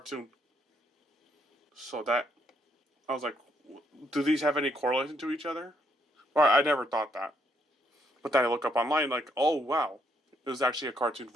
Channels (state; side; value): normal; both; correlation 0.73